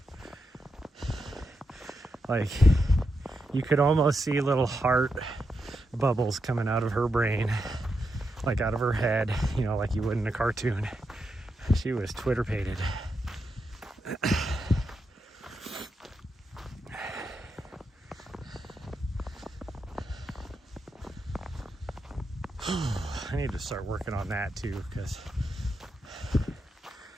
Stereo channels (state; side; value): normal; both; correlation 0.85